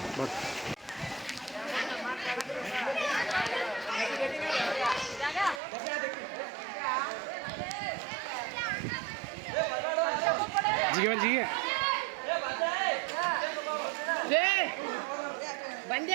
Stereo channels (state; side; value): drops out; left; at 5.6 s